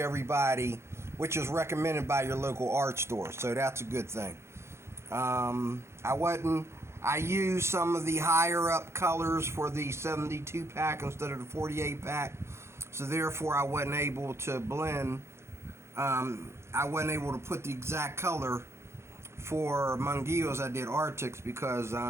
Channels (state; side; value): late; left; 0.13 ms